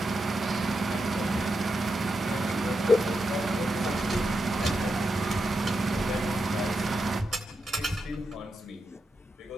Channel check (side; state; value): both; normal; correlation 0.86